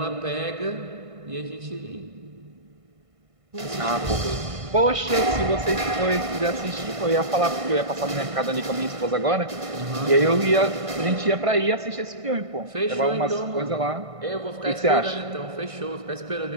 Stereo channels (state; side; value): late; left; 1.5 ms